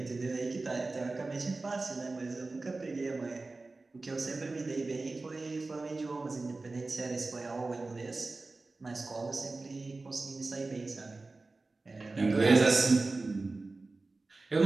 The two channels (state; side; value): quieter; left; 3.5 dB